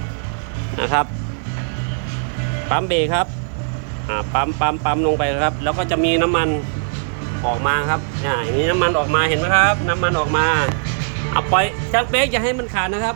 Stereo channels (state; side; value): silent; left; digital silence